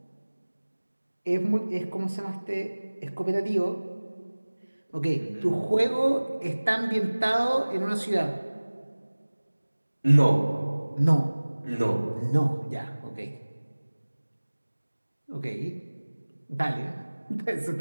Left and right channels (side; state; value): both; inverted; correlation -1.00